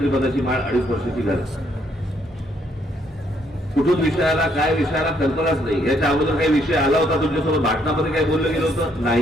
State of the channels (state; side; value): normal; both; correlation 0.70